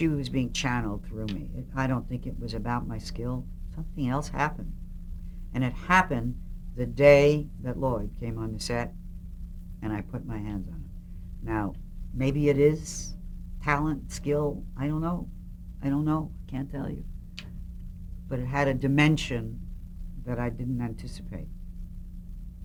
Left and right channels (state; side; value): identical; both; correlation 1.00